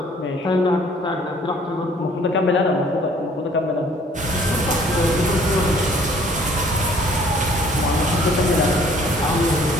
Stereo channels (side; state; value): both; normal; correlation 0.58